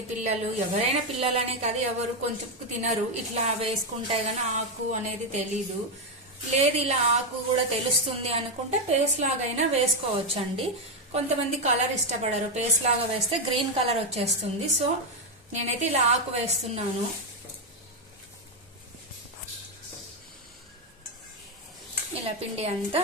పిల్లలు, ఎవరైనా పిల్లలనే కాదు, ఎవరు కొంచెం తినరు. ఇట్లా వేసుకుంటే గానీ ఆకు అనేది తెలీదు. లేదు ఇలా ఆకు కూడా తెలుస్తుంది అనుకుంటే పేస్ట్ లాగైనా వేసుకోవచ్చు అండి. కొంతమంది కలర్ ఇష్టపడరు, పేస్ట్ లాగా వేస్తే గ్రీన్ కలర్ వచ్చేస్తుంది. సో నేనైతే ఇలా ఆకు వేస్తున్నాను. ఇలా పిండి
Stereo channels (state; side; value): normal; both; correlation 0.05